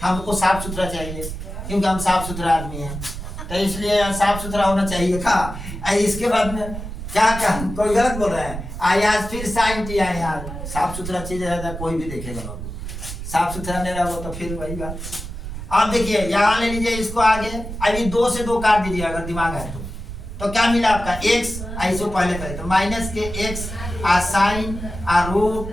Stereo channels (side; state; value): right; noise; rumble, 8 dB below the sound